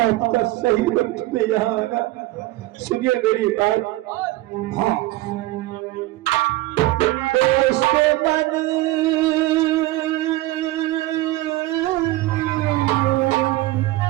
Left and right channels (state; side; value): quieter; left; 17.8 dB